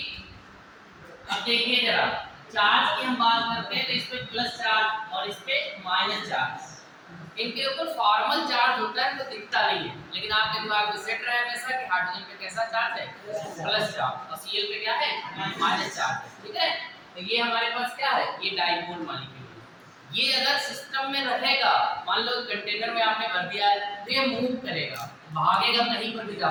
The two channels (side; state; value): both; identical; correlation 1.00